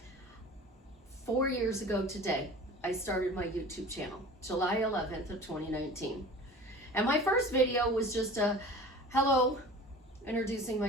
4 years ago today, I started my YouTube channel, July 11th of 2019. And my first video was just a hello, introducing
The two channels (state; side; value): normal; both; correlation 0.40